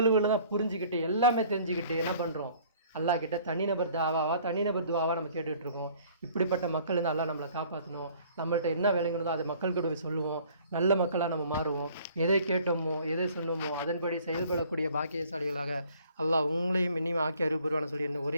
தான் புரிஞ்சுக்கிட்டு எல்லாமே தெரிஞ்சுக்கிட்டு என்ன பண்ணுறோம்? அல்லாஹ் கிட்ட தனிநபர் துவாவா நம்ம கேட்டுட்ருக்கோம். இப்படிப்பட்ட மக்கள் இருந்து அல்லாஹ் நம்மளை காப்பாற்றணும். நம்மள்ட்ட என்ன விளங்கணுதோ அதை மக்கள்கிட்ட போய் சொல்லுவோம். நல்ல மக்களாக நம்ம மாறுவோம். எதை கேட்டோமோ எதை சொன்னோமோ அதன்படி செயல்படக்கூடிய பாக்கியசாலிகளாக அல்லாஹ் உங்களையும் இன்னும் ஆக்கி அருள்புரிவான சொல்லி என்ன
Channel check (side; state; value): both; inverted; correlation -0.55